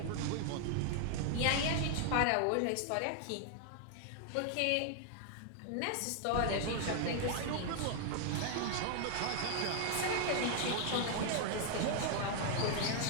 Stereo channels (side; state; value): both; different; correlation 0.00